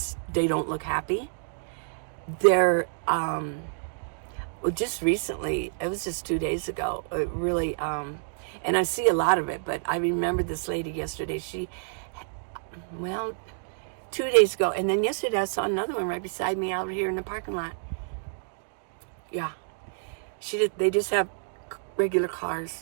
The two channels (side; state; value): left; silent; digital silence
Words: look happy. They're just recently, it was just 2 days ago, it really, and I see a lot of it, but I remember this lady yesterday, 2 days ago, and then yesterday I saw another one right beside me out here in the parking lot. Yeah, they just have regular cars.